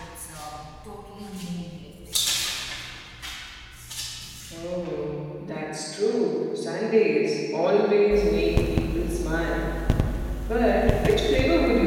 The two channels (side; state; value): both; identical; correlation 1.00